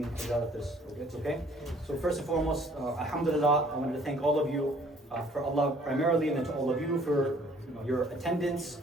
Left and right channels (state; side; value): normal; both; correlation 0.58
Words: if it's okay. So first and foremost, alhamdulillah, I wanted to thank all of you for Allah primarily, and then to all of you for your attendance,